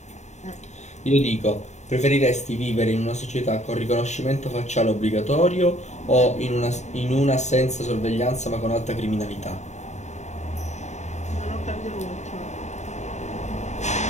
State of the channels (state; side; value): late; right; 0.34 ms